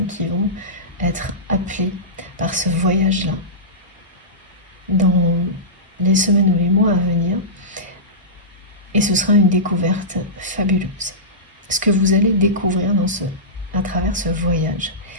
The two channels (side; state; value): both; normal; correlation -0.18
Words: qui vont être appelées par ce voyage-là dans les semaines ou les mois à venir. Et ce sera une découverte fabuleuse. Ce que vous allez découvrir à travers ce voyage